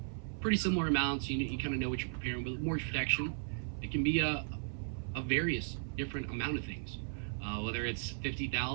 pretty similar amounts. You kind of know what you're preparing. But with mortgage protection, it can be a various different amount of things, whether it's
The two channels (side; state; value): left; silent; 54 dB below the other